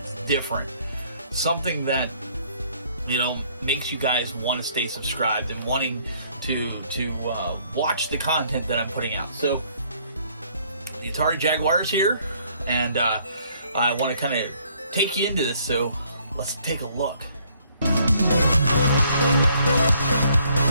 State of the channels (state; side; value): inverted; both; correlation -0.64